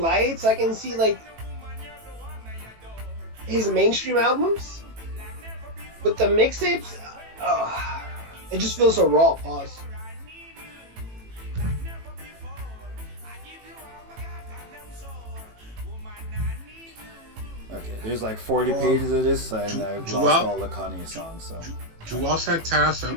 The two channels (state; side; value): late; left; 18 ms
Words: I can see like his mainstream albums, but the mixtapes, it just feels so raw. Pause. Okay, there's like 40 pages of this, and I've lost all the Kanye songs. So. Joel Santana